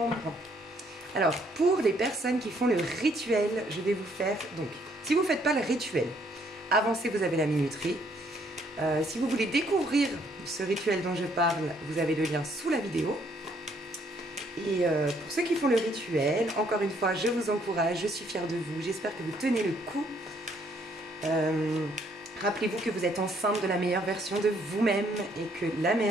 Alors, pour les personnes qui font le rituel, je vais vous faire, donc, si vous ne faites pas le rituel, avancez, vous avez la minuterie. Si vous voulez découvrir ce rituel dont je parle, vous avez le lien sous la vidéo. Et pour ceux qui font le rituel, encore une fois, je vous encourage, je suis fière de vous, j'espère que vous tenez le coup. Rappelez-vous que vous êtes enceinte de la meilleure version de vous-même et que la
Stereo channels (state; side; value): normal; both; correlation 0.67